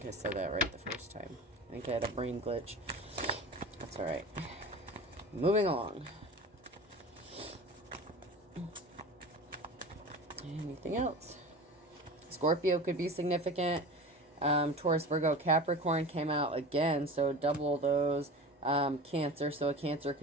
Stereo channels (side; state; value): both; normal; correlation 0.34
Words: I said that right the first time. I think I had a brain glitch. All right. Moving along. Anything else? Scorpio could be significant. Taurus, Virgo, Capricorn came out again, so double those. Cancer, so a Cancer